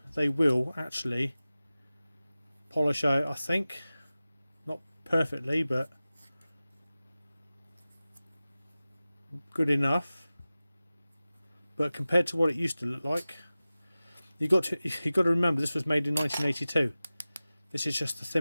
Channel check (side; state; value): both; inverted; correlation -0.97